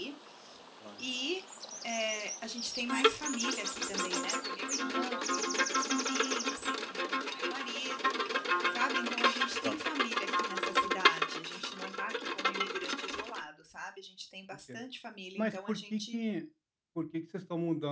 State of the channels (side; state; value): both; identical; correlation 1.00